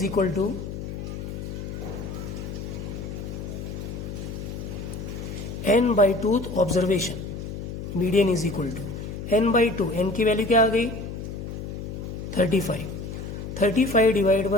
equal to n by 2 observation. Median is equal to n by 2. n की वैल्यू क्या आ गई, 35. 35 divide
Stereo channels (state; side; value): noise; left; hum, 7 dB below the sound